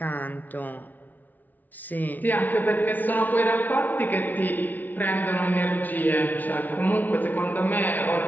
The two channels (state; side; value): late; right; 0.081 ms